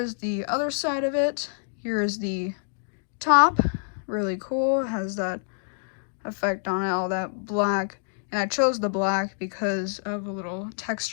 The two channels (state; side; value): silent; right; digital silence